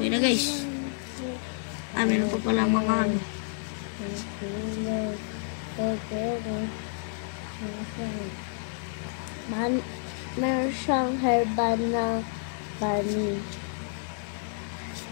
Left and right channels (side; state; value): right; silent; digital silence